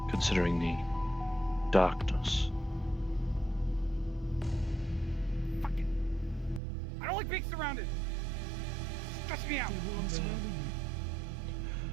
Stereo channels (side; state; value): left; drops out; at 6.6 s